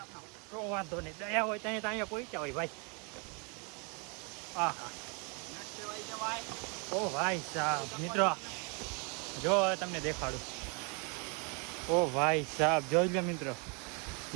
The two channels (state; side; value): quieter; left; 34.5 dB